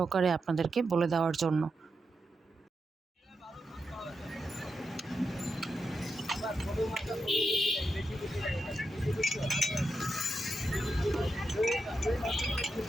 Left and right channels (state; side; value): normal; both; correlation 0.86